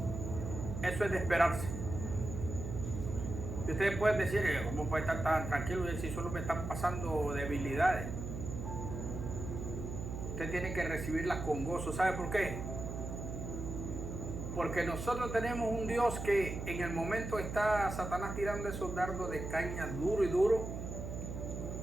eso es de esperarse. Y ustedes pueden decir, ¿cómo puede estar tan tranquilo y si solo me están pasando debilidades? Usted tiene que recibirlas con gozo. ¿Sabe por qué? Porque nosotros tenemos un Dios que en el momento está Satanás tirando esos dardos de caña duro y duro,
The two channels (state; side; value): noise; right; hum, 6 dB below the sound